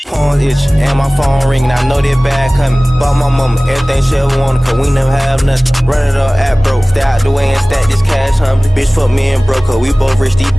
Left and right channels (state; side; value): normal; both; correlation 0.98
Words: Phone itch and my phone ringing. I know that bad coming. Bought my mama everything she ever wanted, cause we never have nothing. Run it up at broke. Stay out the way and stack this cash humbly. Bitch fuck me and broke her. We both rich, these